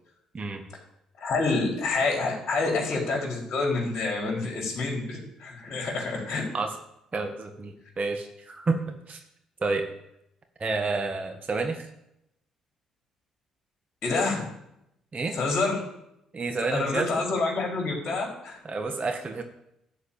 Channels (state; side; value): normal; both; correlation 0.72